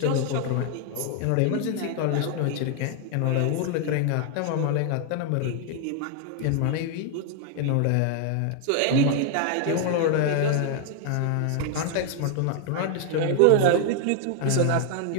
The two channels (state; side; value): different; both; correlation 0.00